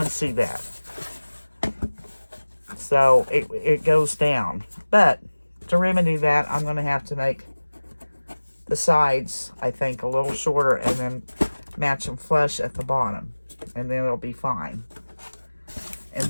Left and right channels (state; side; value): inverted; both; correlation -1.00